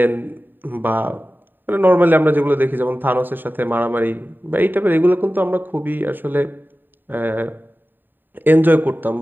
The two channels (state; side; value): late; left; 0.092 ms